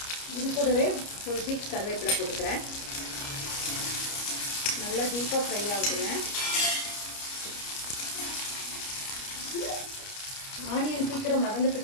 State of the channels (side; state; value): right; late; 29 ms